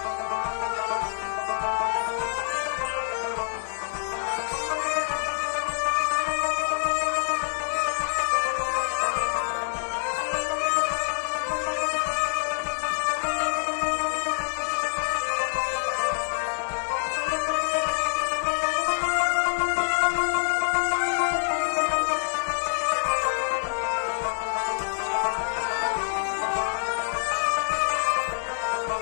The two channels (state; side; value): silent; right; digital silence